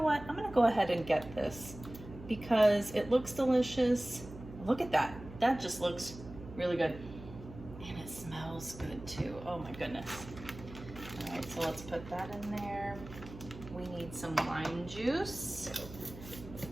what? I'm gonna go ahead and get this because it looks delicious. Look at that. That just looks really good. And it smells good too. Oh my goodness. All right, so let's put that in there. We need some lime juice.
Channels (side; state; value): right; noise; hum, 15 dB below the sound